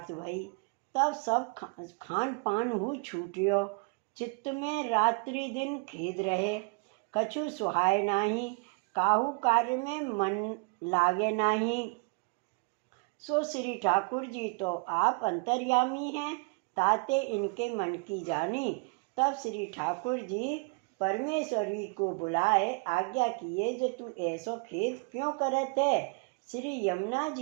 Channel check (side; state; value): left; quieter; 31.5 dB